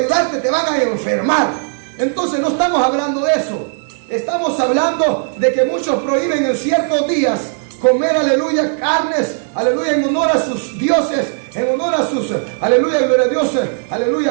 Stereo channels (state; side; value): silent; left; digital silence